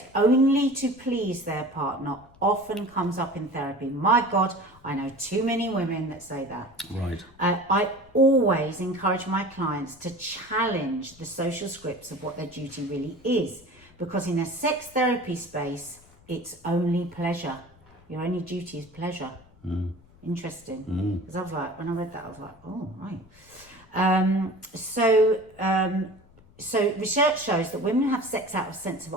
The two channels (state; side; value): noise; left; rumble, 26 dB below the sound